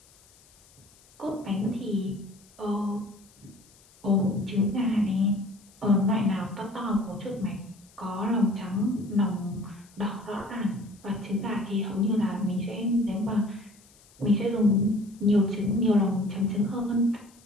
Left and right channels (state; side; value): noise; left; hiss, 28 dB below the sound